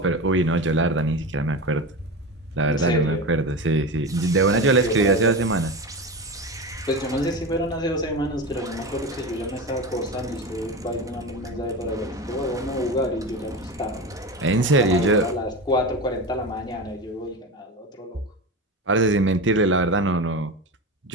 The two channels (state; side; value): normal; both; correlation 0.24